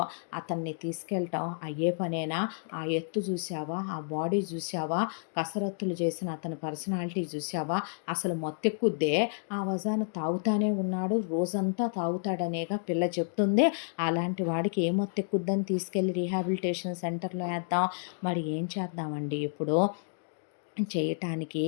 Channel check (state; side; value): silent; right; digital silence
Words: అతన్ని తీసుకెళ్ళటం అయ్యే పనేనా? ఆ ఎత్తు చూసావా, ఆ బాడీ చూసావా, కసరత్తులు చేసిన అతని పర్సనాలిటీ చూసావా? అసలు మొత్తెక్కుద్దే. ఆ వజాను తాగుతానే ఉన్నాడు, రోజంతా తాగుతాడనేగా పిల్ల చెప్తుంది. అలాంటి వాడికి ఏ మొత్తెక్కుద్దని తీసుకెళ్ళి రీహాబిలిటేషన్ సెంటర్లో వేద్దాం. మరి ఏం చేద్దామండి? ఇప్పుడు చేయటానికి